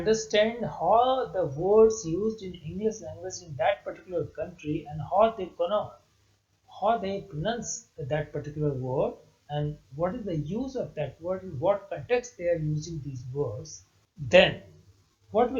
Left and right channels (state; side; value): identical; both; correlation 1.00